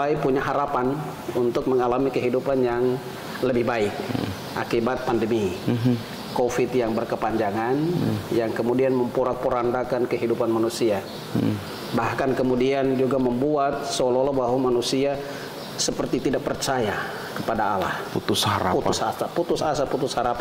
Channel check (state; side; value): identical; both; correlation 1.00